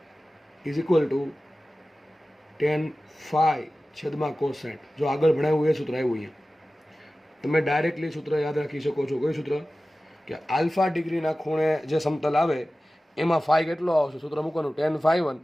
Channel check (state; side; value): normal; both; correlation 0.96